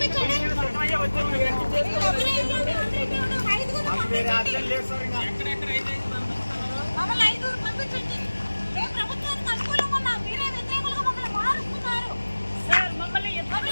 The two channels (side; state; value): both; inverted; correlation -1.00